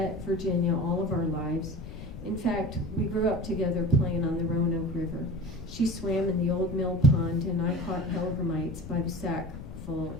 Virginia all of our lives. In fact, we grew up together playing on the Roanoke River. She swam in the old mill pond, and I caught hellgrammites by the sackful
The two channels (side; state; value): left; noise; rumble, 11 dB below the sound